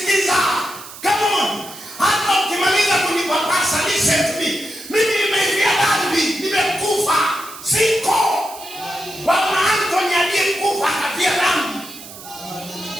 Come on. Hata ukimaliza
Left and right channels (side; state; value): right; noise; hiss, 15 dB below the sound